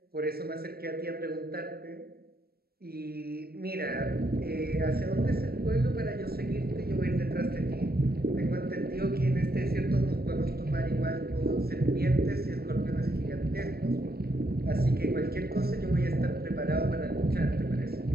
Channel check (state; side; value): late; left; 0.45 ms